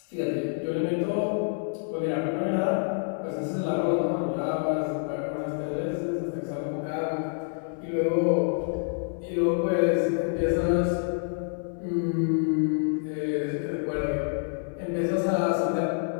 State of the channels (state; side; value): silent; right; 58 dB below the other